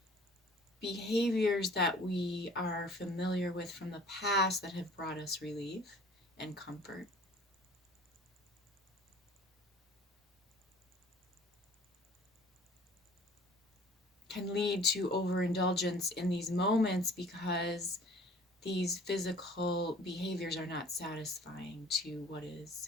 behaviors that we are familiar with from the past that have brought us relief and comfort, can lead to overindulgence in these moments because these physical behaviors are not satisfying to what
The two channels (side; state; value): both; normal; correlation 0.50